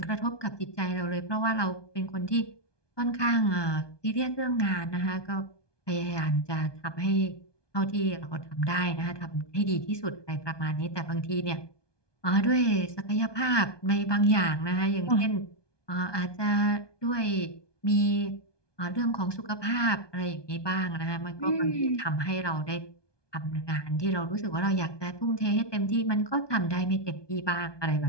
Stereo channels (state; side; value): late; right; 1.2 ms